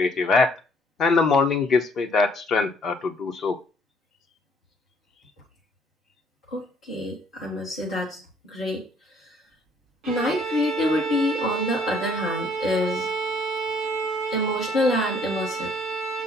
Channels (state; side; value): normal; both; correlation 0.62